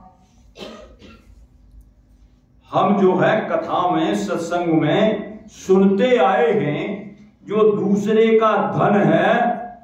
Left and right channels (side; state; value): both; identical; correlation 1.00